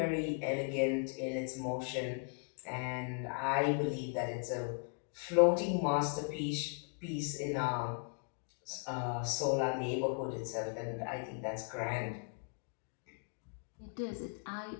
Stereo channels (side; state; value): right; quieter; 37.6 dB